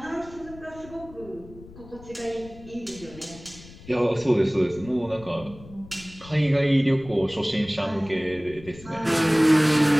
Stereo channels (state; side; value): noise; left; rumble, 19 dB below the sound